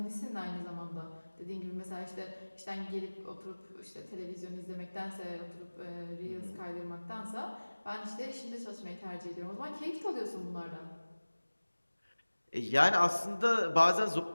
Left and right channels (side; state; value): both; inverted; correlation -1.00